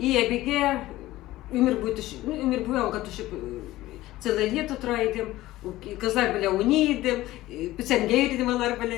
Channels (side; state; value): right; quieter; 16.6 dB